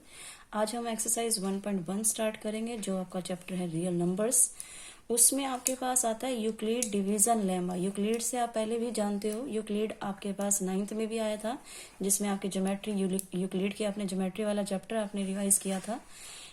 आज हम एक्सरसाइज 1.1 स्टार्ट करेंगे, जो आपका चैप्टर है रियल नंबर्स। उसमें आपके पास आता है यूक्लिड डिवीजन लेमा। यूक्लिड से आप पहले भी जानते हो, यूक्लिड आपके पास 9th में भी आया था, जिसमें आपके ज्योमेट्री यूक्लिड के आपने ज्योमेट्री वाला चैप्टर आपने रिवाइज किया था।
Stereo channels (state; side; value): identical; both; correlation 1.00